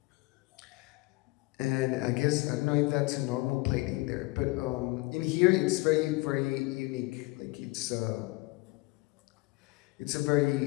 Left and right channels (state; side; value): quieter; right; 23.2 dB